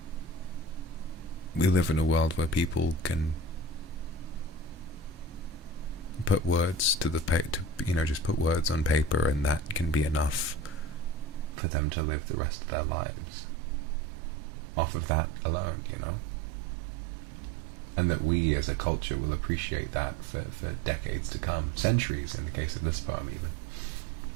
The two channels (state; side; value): drops out; left; at 11.6 s